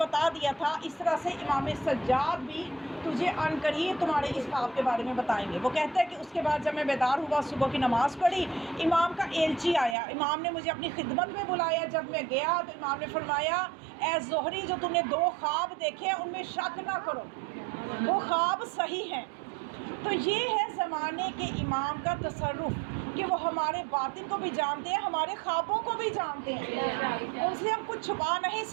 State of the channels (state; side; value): drops out; left; at 10.0 s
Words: دیا تھا، اس طرح سے امام سجاد بھی تجھے عن قریب تمہارے اس خواب کے بارے میں بتائیں گے. وہ کہتا ہے کہ اس کے بعد جب میں بیدار ہوا، صبح کی نماز پڑھی، امام کا ایلچی آیا، امام نے مجھے اپنی خدمت میں بلایا. جب میں گیا تو امام نے فرمایا اے زہری، جو تم نے 2 خواب دیکھے ان میں شک نہ کرو، وہ خواب صحیح ہیں. تو یہ ہے زمانے کے امام کا تصرف کہ وہ ہمارے باطن کو بھی جانتے ہیں، ہمارے خوابوں کو بھی جانتے ہیں، ان سے ہم کچھ چھپا نہیں